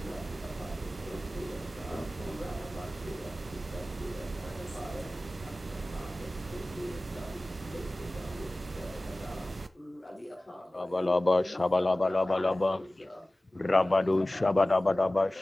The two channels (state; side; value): normal; both; correlation 0.97